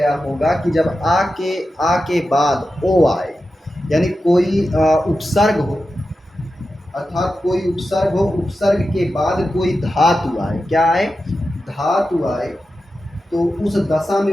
होगा कि जब आ के बाद ओ आए, यानी कोई उपसर्ग हो, अर्थात कोई उपसर्ग हो, उपसर्ग के बाद कोई धातु आए, क्या आए? धातु आए, तो उस दशा में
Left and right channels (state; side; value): normal; both; correlation 0.91